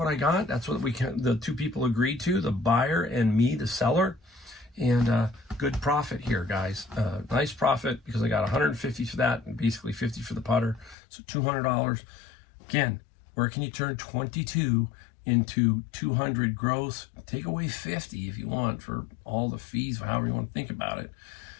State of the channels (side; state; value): right; drops out; at 11.0 s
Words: I got. That's what the two people agreed to, the buyer and me, the seller. And good profit here, guys. Nice profit, because I got 150 for that and basically 50 for the putter. So $200. Again, where can you turn 22 into 200 gross? Take away 50 if you want for all the fees, however you want to think about it.